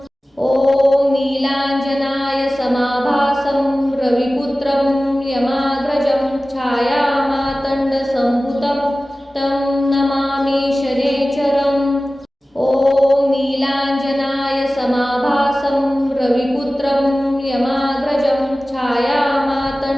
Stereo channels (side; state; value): both; normal; correlation 0.96